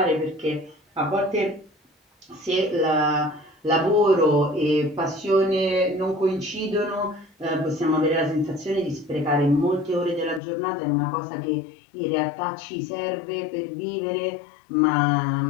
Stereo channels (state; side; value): drops out; right; at 10.4 s